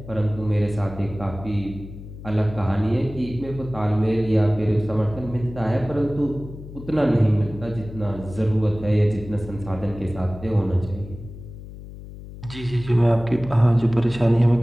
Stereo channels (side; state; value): left; noise; hum, 14 dB below the sound